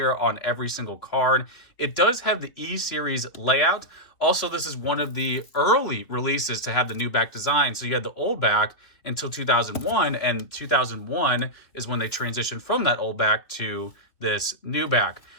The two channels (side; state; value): right; late; 3.2 ms